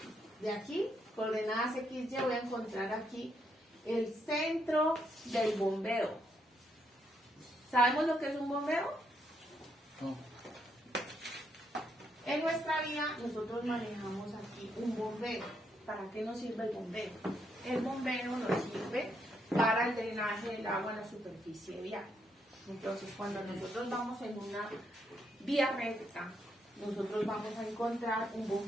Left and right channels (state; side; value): normal; both; correlation 0.77